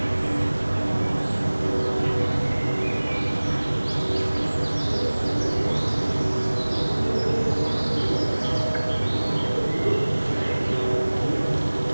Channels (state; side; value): inverted; both; correlation -1.00